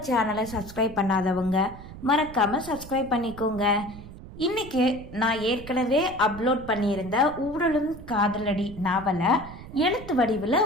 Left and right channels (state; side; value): noise; right; rumble, 15 dB below the sound